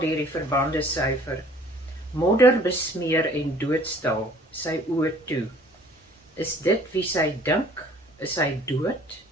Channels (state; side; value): normal; both; correlation 0.54